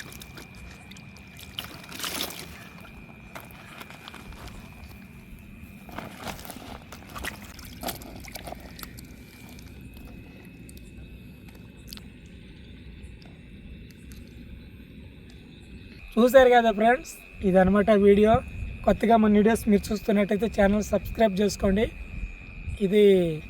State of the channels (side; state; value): both; identical; correlation 1.00